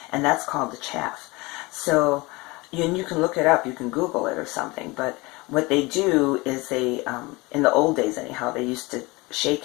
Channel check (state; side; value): quieter; right; 23.7 dB